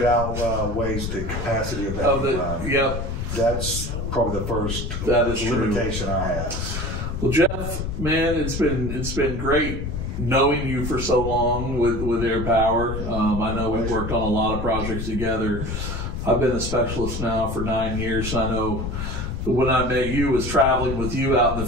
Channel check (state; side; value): noise; left; rumble, 4 dB below the sound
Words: outweighs the capacity of that. Yep. That's probably the first limitation I have. Well, Jeff, man, it's been great knowing you for so long with Air Power. I know we've worked on a lot of projects together. I've been a specialist now for 9 years. I know when I met you was traveling with you out in